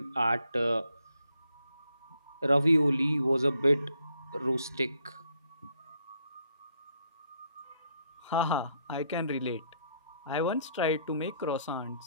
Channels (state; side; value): inverted; both; correlation -0.72